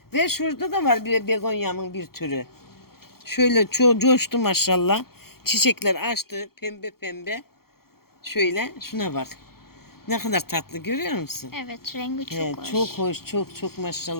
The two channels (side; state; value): right; late; 0.94 ms